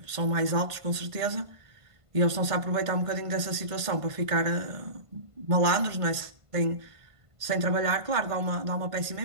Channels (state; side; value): late; left; 1.5 ms